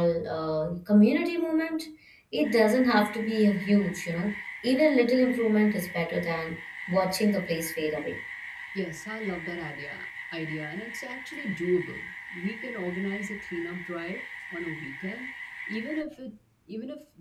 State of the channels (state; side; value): identical; both; correlation 1.00